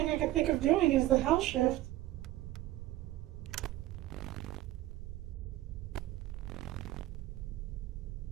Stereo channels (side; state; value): left; quieter; 15.6 dB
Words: I can think of doing is the hell shift.